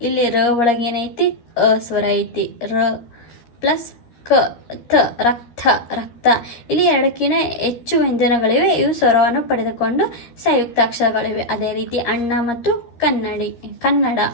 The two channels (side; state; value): right; late; 13 ms